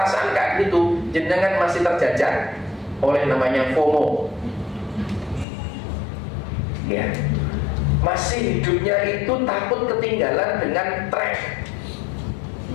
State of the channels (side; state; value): right; drops out; at 5.5 s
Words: kayak gitu, jenengan masih terjajah oleh namanya FOMO. Ya, masih hidupnya itu takut ketinggalan dengan tren.